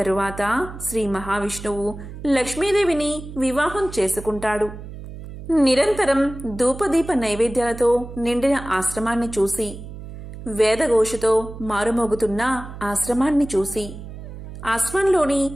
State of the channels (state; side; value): noise; right; hum, 12 dB below the sound